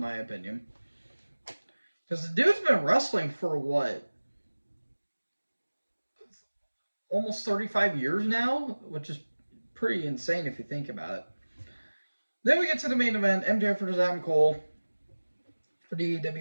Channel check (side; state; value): both; inverted; correlation -1.00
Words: my opinion. Because the dude's been wrestling for what? Almost 35 years now, which is pretty insane if you think about it. Then we get to the main event, MJF versus Adam Cole for the